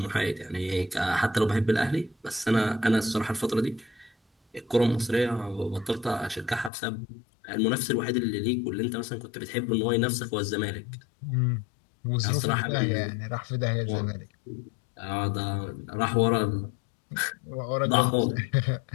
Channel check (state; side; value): drops out; right; at 6.7 s